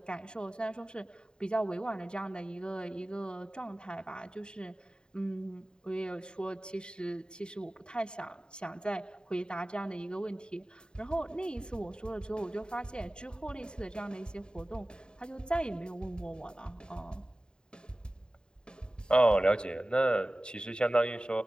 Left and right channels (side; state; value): right; late; 0.048 ms